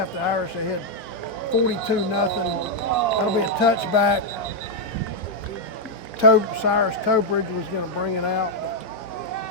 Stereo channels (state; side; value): normal; both; correlation -0.02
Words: the Irish ahead 42-0. That'll be a touchback. Cyrus Tobridge was going to bring it out.